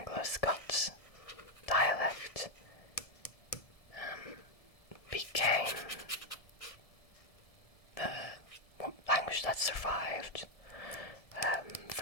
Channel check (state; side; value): late; right; 1.7 ms